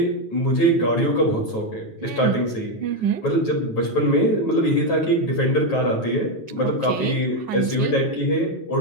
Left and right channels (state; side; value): late; right; 9.4 ms